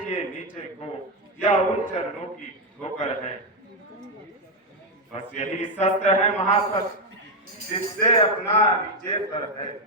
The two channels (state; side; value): normal; both; correlation 0.04